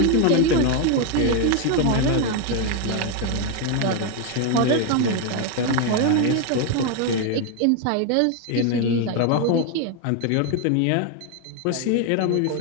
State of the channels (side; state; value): both; different; correlation 0.01